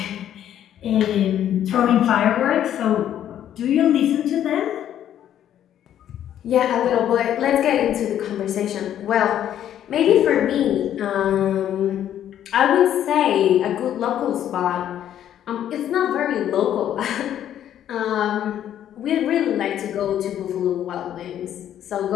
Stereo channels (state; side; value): quieter; right; 10.7 dB